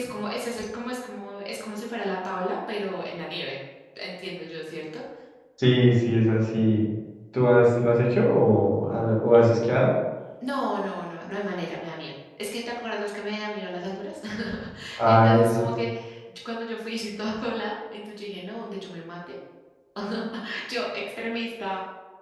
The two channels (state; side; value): identical; both; correlation 1.00